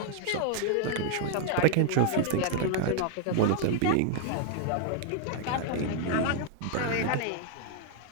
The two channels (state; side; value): different; both; correlation 0.00